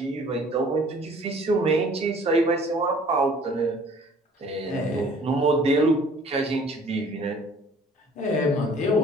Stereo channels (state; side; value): normal; both; correlation 0.53